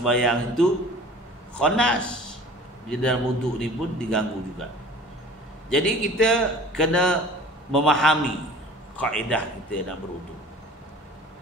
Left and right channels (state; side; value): normal; both; correlation 0.45